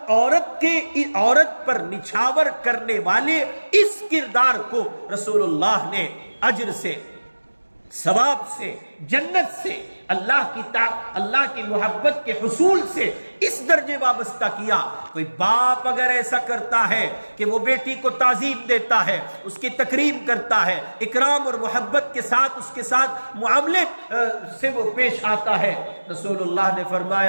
عورت پر نچھاور کرنے والے اس کردار کو رسول اللہ نے اجر سے، ثواب سے، جنت سے، اللہ کی محبت کے حصول سے اس درجے وابستہ کیا. کوئی باپ اگر ایسا کرتا ہے کہ وہ بیٹی کو تعظیم دیتا ہے، اس کی تکریم کرتا ہے، اکرام اور محبت کے ساتھ اس کے ساتھ معاملے سے وہ پیش آتا ہے، رسول اللہ نے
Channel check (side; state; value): both; inverted; correlation -1.00